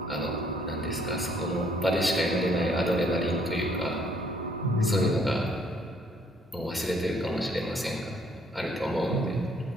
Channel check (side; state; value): both; normal; correlation 0.65